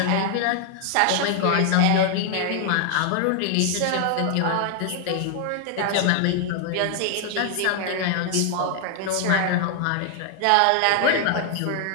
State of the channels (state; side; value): different; both; correlation 0.00